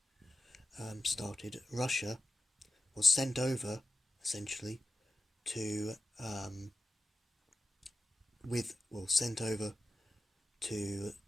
started, Russia was sent over essentially to sent over to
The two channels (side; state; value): both; normal; correlation 0.94